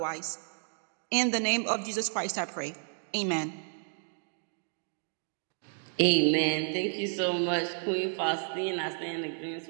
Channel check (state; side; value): silent; left; 57 dB below the other